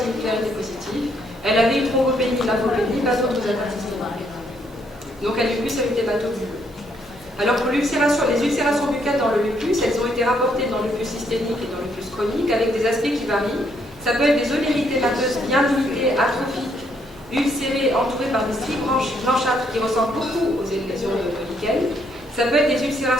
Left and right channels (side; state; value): both; normal; correlation 0.72